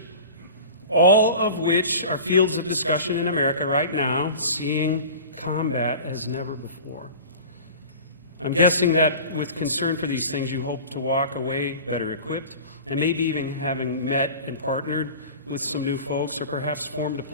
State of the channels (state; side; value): inverted; both; correlation -0.38